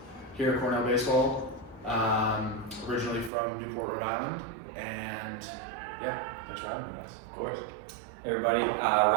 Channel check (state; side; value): drops out; left; at 3.3 s